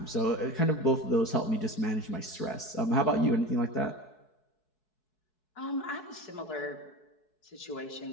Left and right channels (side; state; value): right; late; 4.7 ms